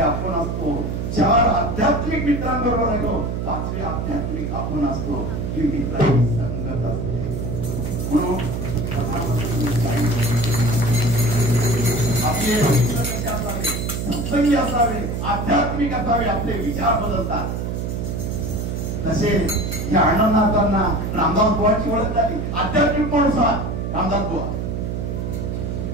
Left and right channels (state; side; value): noise; right; hum, 3 dB below the sound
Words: आपण असतो. 4 आध्यात्मिक मित्रांबरोबर राहिलो 5वे आध्यात्मिक आपण असतो. ही मित्रांची संगत असते. म्हणून आपले मित्र कसे असावे, सत्संगी असावे, आध्यात्मिक असावे, आपले विचार बदलतात. तसे या अण्णांना रामदास बुवांची ओळख झाली. आध्यात्मिक माणूस रामदास बुवा